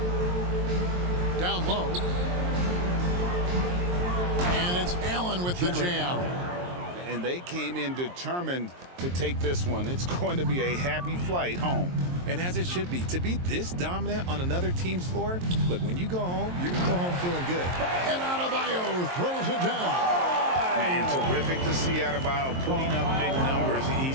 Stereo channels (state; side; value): late; left; 23 ms